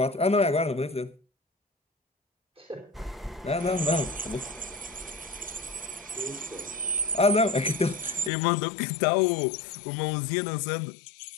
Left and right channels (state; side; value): drops out; right; at 8.3 s